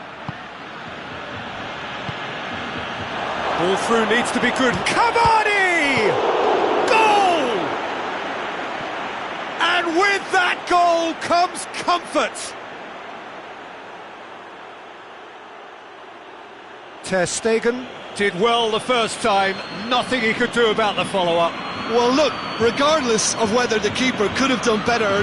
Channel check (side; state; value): both; identical; correlation 1.00